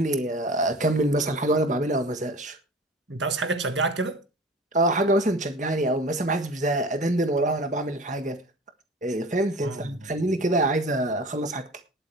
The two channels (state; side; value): normal; both; correlation 0.39